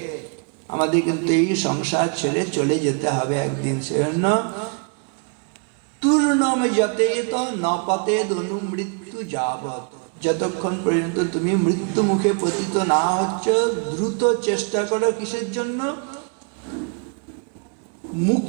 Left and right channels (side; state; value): left; quieter; 38.1 dB